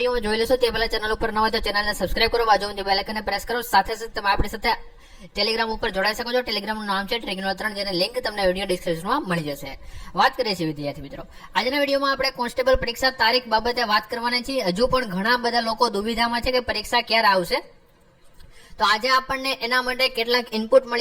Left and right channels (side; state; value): both; identical; correlation 1.00